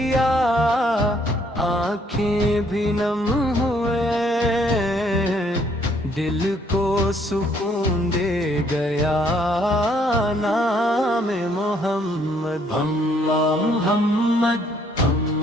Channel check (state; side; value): normal; both; correlation 0.66